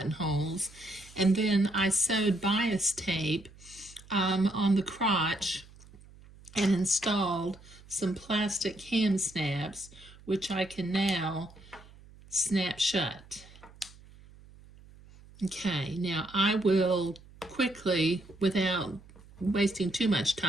And then I sewed bias tape on the crotch and installed some plastic hem snaps, which I can now snap shut. Okay, now I will quickly, without wasting too much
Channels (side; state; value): right; noise; hum, 22 dB below the sound